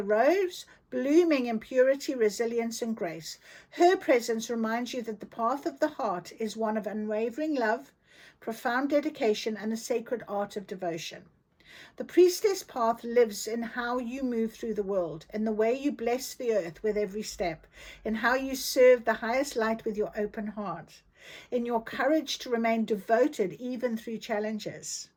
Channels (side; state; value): both; identical; correlation 1.00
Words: rose, blooming in purity, resilience, and grace. Her presence reminds you that the path of the heart is one of unwavering love, profound dedication, and the sacred art of devotion. The priestess path lives in how you move through the world, in the way you bless the earth with every step, in how you serve the highest light with your open heart, in your courage to remain devoted even through challenges.